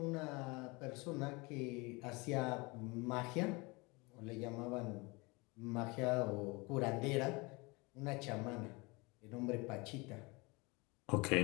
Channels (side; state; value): right; quieter; 26.4 dB